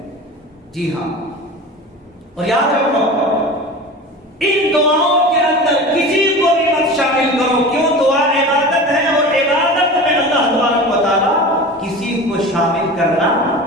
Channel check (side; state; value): both; normal; correlation 0.33